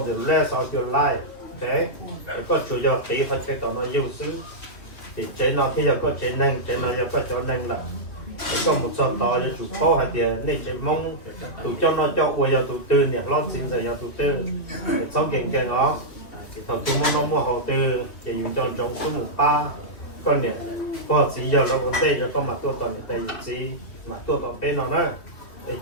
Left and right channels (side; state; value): right; late; 2.7 ms